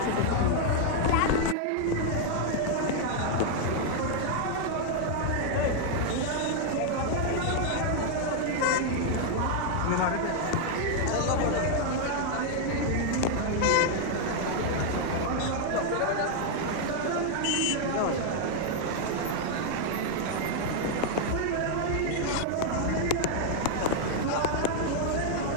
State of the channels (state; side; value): different; both; correlation 0.00